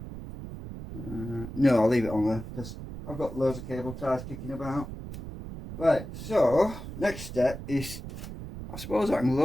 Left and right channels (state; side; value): noise; right; rumble, 10 dB below the sound